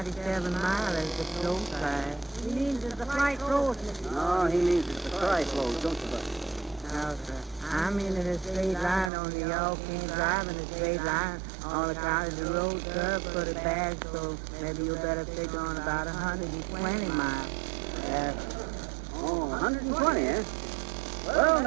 miles as the flow side. He means it's the flight road. No, he means it's the tri-flow, don't you, bud? No, sir. I'm in a straight line, only y'all can't drive in a straight line. On account of the road curve for the bag, so maybe you better figure on about 120 miles. Oh, 120, eh? Well, in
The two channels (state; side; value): drops out; left; at 9.1 s